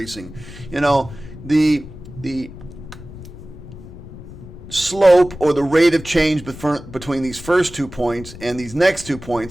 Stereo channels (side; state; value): left; noise; rumble, 15 dB below the sound